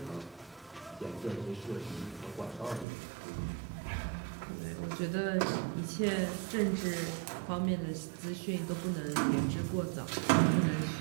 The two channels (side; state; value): left; drops out; at 2.9 s